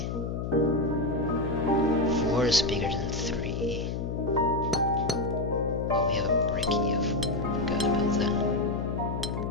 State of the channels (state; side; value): noise; left; hum, 3 dB below the sound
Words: 4 is bigger than 3. Oh, we have a bricky. I forgot about that.